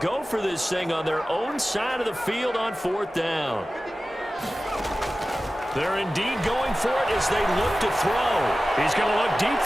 go for this thing on their own side of the field on 4th down. They're indeed going for it as they look to throw. He's going to look deep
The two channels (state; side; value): normal; both; correlation 0.95